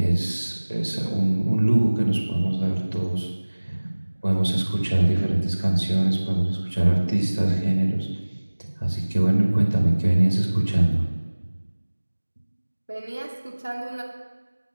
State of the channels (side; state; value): both; inverted; correlation -1.00